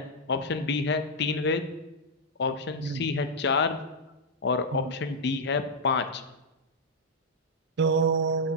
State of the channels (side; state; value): both; normal; correlation -0.06